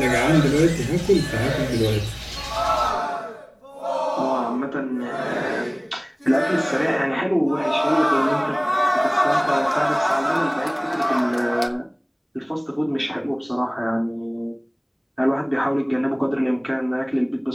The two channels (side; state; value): both; identical; correlation 1.00